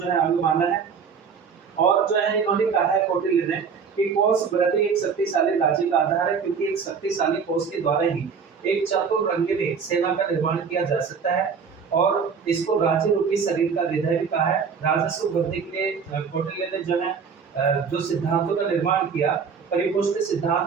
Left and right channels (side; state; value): left; quieter; 6.1 dB